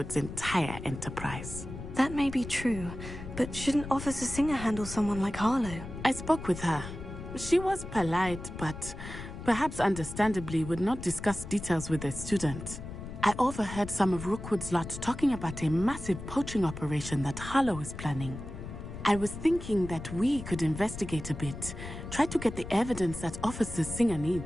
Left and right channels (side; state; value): left; noise; rumble, 10 dB below the sound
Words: entire enterprise. That may be true, but shouldn't Officer Singer handle someone like Harlow? I spoke with her. She was polite, but perhaps understandably would not discuss details with a student. I overheard some of Rookwood's lot talking about a massive poaching operation that Harlow is planning. I was thinking that we could investigate a bit, try to get the evidence that Officer Singer